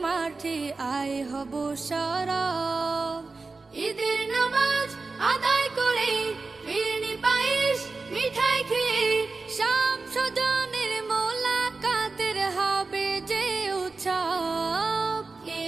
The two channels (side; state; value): left; quieter; 3.9 dB